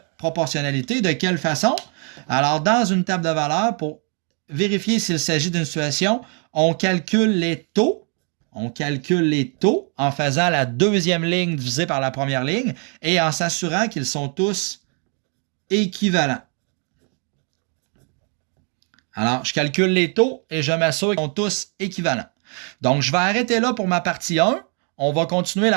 proportionnalité. De quelle façon? Alors, dans une table de valeurs, pour vérifier s'il s'agit d'une situation, on calcule les taux. On calcule les taux en faisant la deuxième ligne divisée par la première ligne et en s'assurant qu'ils sont tous équivalents. Alors, je calcule les taux et je m'assure qu'ils sont tous équivalents. Donc, je vais arrêter là pour ma partie 1. On va continuer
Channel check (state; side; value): quieter; left; 38.9 dB